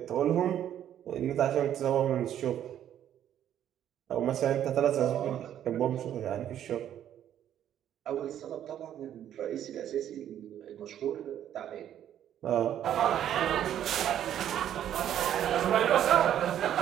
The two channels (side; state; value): left; quieter; 10.7 dB